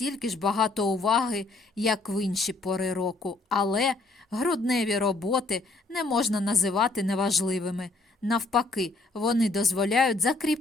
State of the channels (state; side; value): quieter; right; 3.2 dB